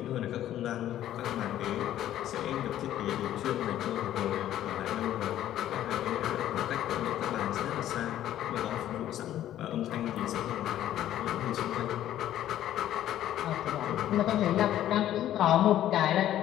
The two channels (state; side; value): quieter; right; 12.3 dB